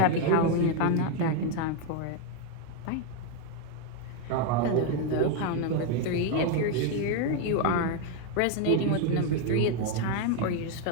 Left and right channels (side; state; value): both; different; correlation 0.01